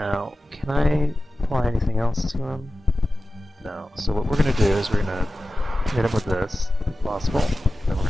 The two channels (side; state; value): both; normal; correlation 0.95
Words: can I apply anything else to him? No. So what we're gonna do is we're gonna hit him with this, if possible. Then we're